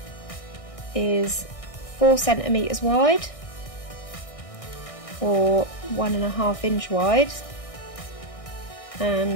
is 4 centimetres wide or 1.5 inch wide,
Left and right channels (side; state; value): right; late; 1.6 ms